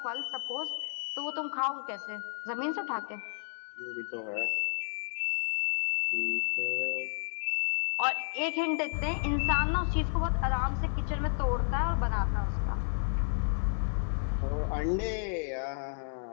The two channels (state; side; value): silent; right; 57 dB below the other